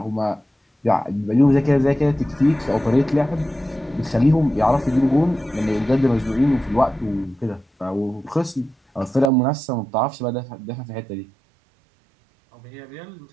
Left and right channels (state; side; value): drops out; left; at 9.3 s